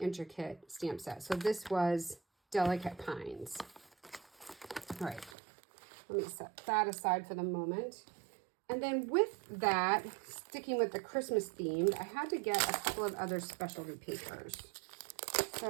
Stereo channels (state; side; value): drops out; left; at 5.4 s